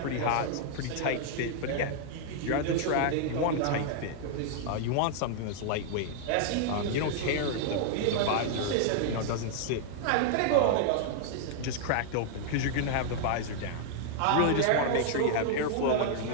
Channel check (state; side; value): different; both; correlation -0.01